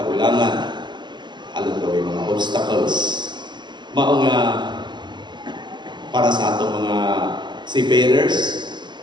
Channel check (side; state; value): left; late; 0.22 ms